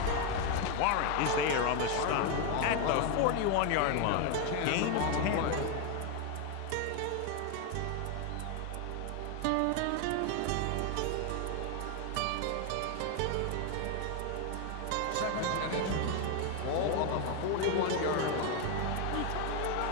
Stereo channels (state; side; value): different; both; correlation 0.01